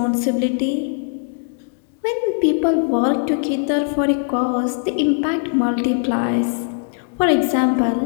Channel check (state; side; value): silent; right; 61 dB below the other